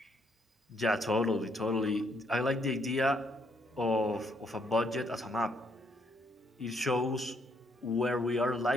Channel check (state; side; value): normal; both; correlation 0.72